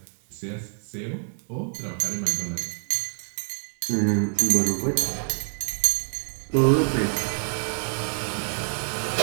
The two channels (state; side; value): silent; left; 58 dB below the other